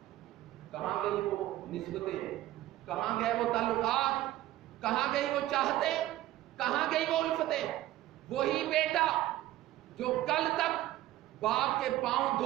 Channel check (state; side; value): quieter; left; 15.1 dB